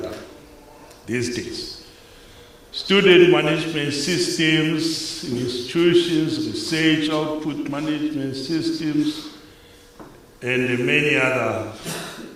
these days. Student management systems in institutions, research output management systems, and many other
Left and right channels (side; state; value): both; identical; correlation 1.00